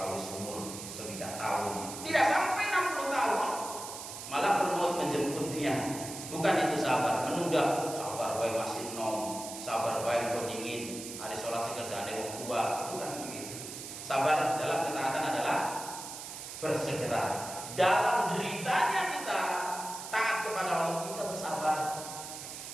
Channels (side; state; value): right; noise; hiss, 9 dB below the sound